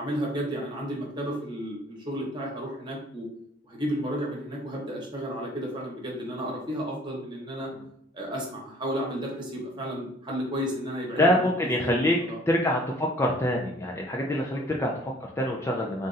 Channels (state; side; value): normal; both; correlation 0.54